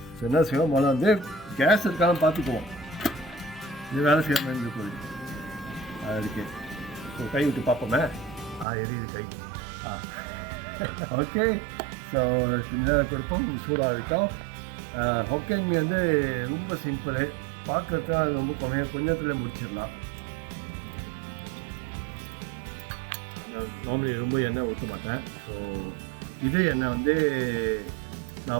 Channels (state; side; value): drops out; left; at 8.7 s